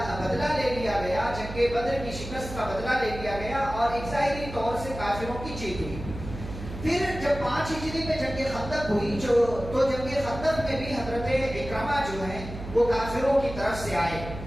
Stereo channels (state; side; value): noise; right; hum, 10 dB below the sound